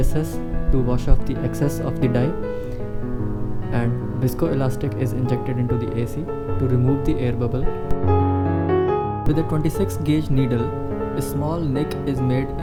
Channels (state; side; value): identical; both; correlation 1.00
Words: to wash off the excess of the dye, and viscoelastic is injected into the AC to remove the air bubble. With a 26 gauge needle, a small nick is made